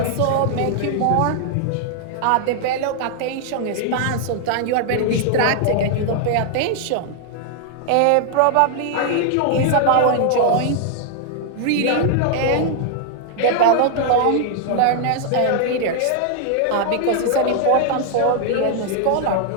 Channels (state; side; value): different; both; correlation 0.00